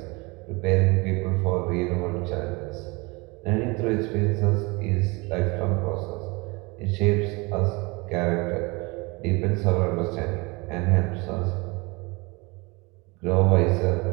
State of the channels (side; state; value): left; quieter; 26.5 dB